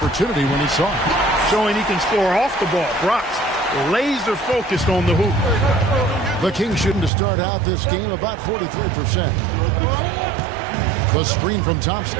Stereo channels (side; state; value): left; drops out; at 7.1 s